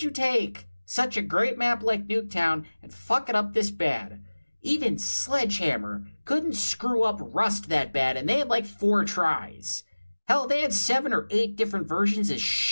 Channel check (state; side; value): inverted; both; correlation -1.00